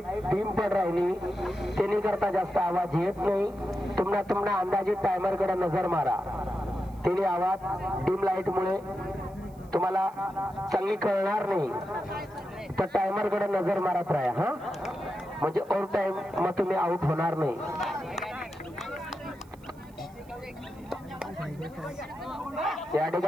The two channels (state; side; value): noise; right; hiss, 29 dB below the sound